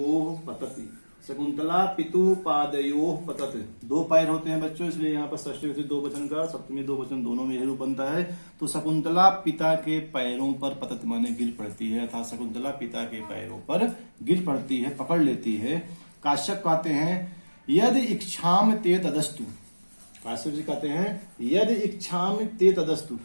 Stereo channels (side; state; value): both; inverted; correlation -1.00